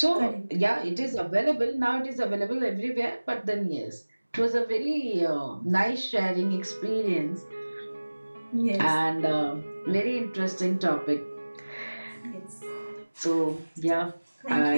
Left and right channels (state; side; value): inverted; both; correlation -1.00